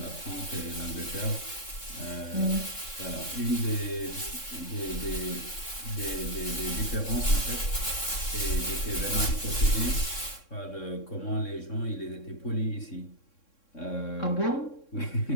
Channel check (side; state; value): right; late; 3.6 ms